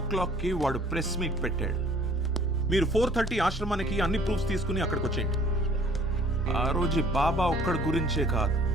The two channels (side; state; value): both; normal; correlation 0.55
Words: o'clockకి వాడు ప్రెస్ మీట్ పెట్టాడు. మీరు 4:30 ఆశ్రమానికి అన్ని ప్రూఫ్స్ తీసుకుని అక్కడికి వచ్చేయండి. ఆ రోజు బాబా ఒక్కడి గురించే కాదు,